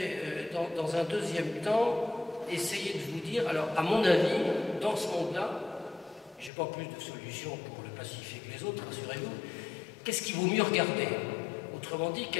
dans un deuxième temps, essayer de vous dire, alors, à mon avis, dans ce monde-là, je n'ai pas plus de solutions pour le pacifier que les autres, rassurez-vous, qu'est-ce qu'il vaut mieux regarder? Autrement dit,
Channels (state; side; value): drops out; right; at 6.5 s